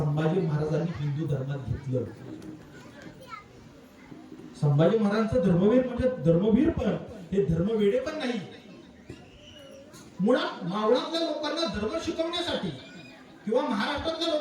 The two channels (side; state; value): both; identical; correlation 1.00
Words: महाराजांनी हिंदू धर्मात घेतलं. संभाजी महाराजांचं धर्मवीर म्हणजे धर्मवीर, पण हे धर्मवेडे पण नाही. मुळात मावळातल्या लोकांना धर्म शिकवण्यासाठी किंवा महाराष्ट्रातल्या